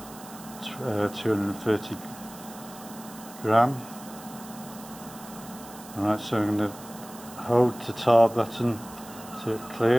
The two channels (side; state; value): right; noise; hiss, 17 dB below the sound